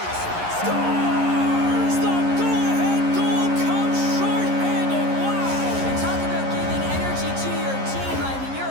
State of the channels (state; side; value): late; left; 11 ms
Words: Scores! The go-ahead goal comes short-handed. Wow! And talk about giving energy to your team. I mean, you're